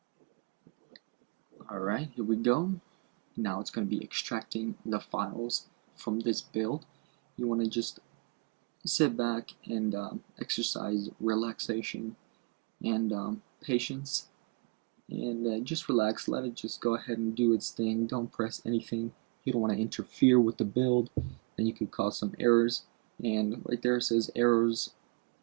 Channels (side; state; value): left; quieter; 31.8 dB